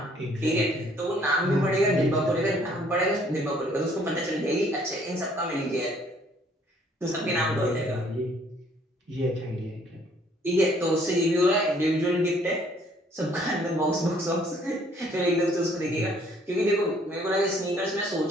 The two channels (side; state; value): both; normal; correlation 0.62